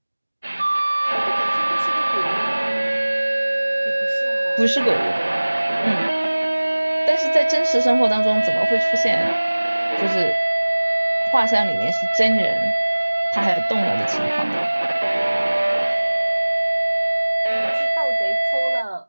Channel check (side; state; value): both; inverted; correlation -1.00